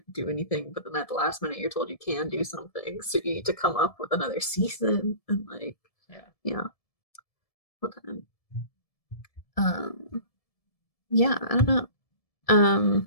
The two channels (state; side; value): late; right; 1.7 ms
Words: do anything, but then at the last minute you're told you can do something. So you need to come up with another season and like Yeah. yeah. Well then. Yeah, I don't know.